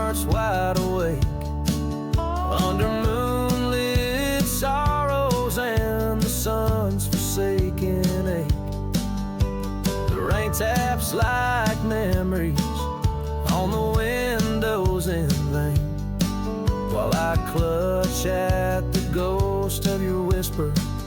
wide awake under moonlit sorrows and the sun's forsaken ache. The rain taps like memories on the windows in vain, while I clutch at the ghost of your whisper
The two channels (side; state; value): both; identical; correlation 1.00